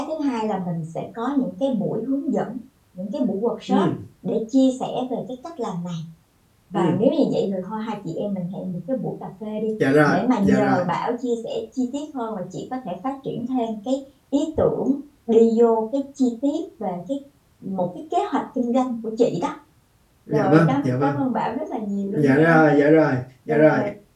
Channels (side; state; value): both; identical; correlation 1.00